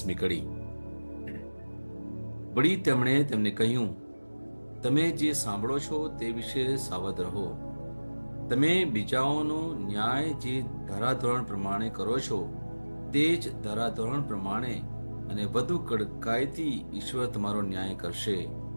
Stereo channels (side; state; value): both; inverted; correlation -1.00